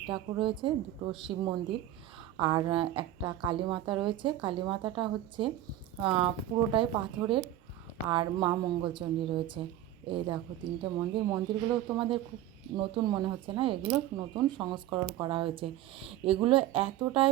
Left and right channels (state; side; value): quieter; left; 13.2 dB